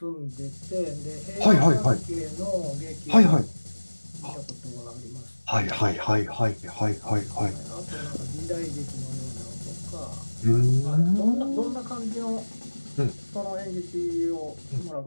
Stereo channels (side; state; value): both; inverted; correlation -1.00